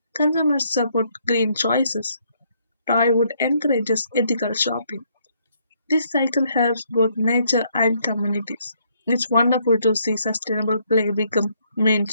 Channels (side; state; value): both; inverted; correlation -0.70